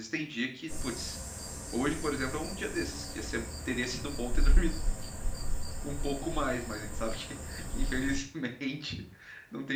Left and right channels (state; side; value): identical; both; correlation 1.00